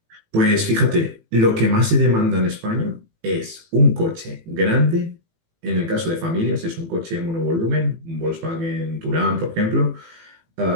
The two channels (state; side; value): late; left; 18 ms